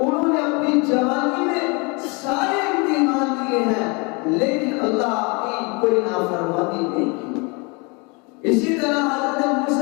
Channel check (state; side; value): quieter; right; 29.9 dB